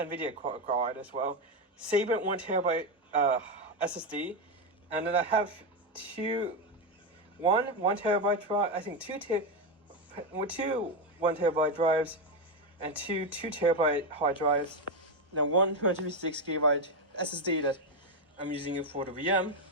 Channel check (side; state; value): both; normal; correlation 0.09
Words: card as well, Sabrent 1TB SSD, and then I have 1 terabyte drive, I think two 1 terabyte drives, and 2 terabyte hard drives, and then 1 256 gigabyte SSD that I'm using it for the VM.